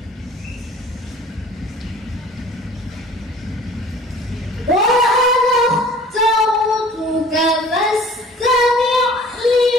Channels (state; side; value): normal; both; correlation 0.48